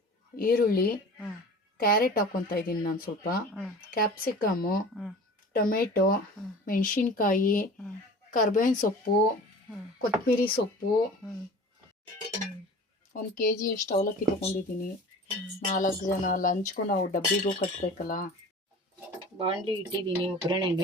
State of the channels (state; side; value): normal; both; correlation 0.40